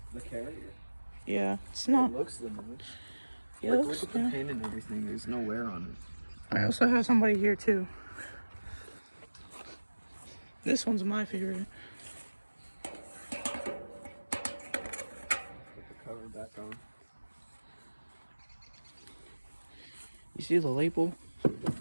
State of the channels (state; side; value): inverted; both; correlation -1.00